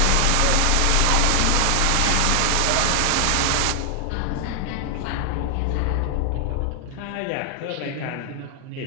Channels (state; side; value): different; both; correlation 0.00